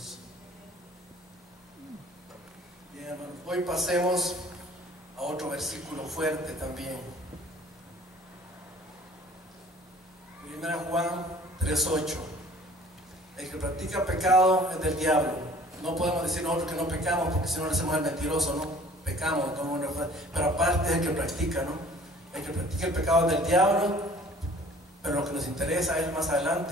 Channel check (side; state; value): both; normal; correlation 0.51